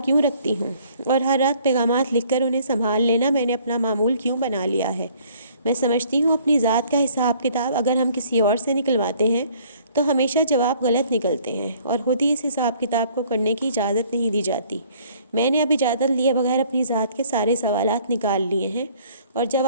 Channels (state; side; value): inverted; both; correlation -0.58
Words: کیوں رکھتی ہوں، اور ہر رات پیغامات لکھ کر انہیں سنبھال لینا میں نے اپنا معمول کیوں بنا لیا ہے۔ میں سمجھتی ہوں اپنی ذات کا حساب کتاب اگر ہم کسی اور سے نکلواتے ہیں تو ہمیشہ جواب غلط نکلتے ہیں، اور خود ہی اس حساب کتاب کو کرنے کی اجازت نہیں دی جاتی۔ میں نے اب اجازت لیے بغیر اپنی ذات کے سارے سوالات نکال لیے ہیں اور